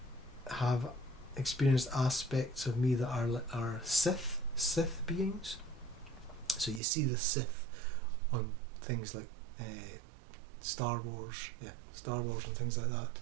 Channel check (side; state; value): left; drops out; at 6.8 s